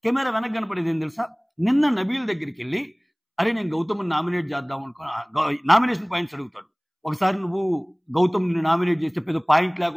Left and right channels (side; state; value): both; identical; correlation 1.00